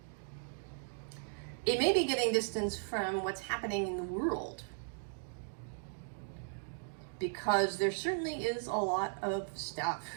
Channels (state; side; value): silent; left; 53 dB below the other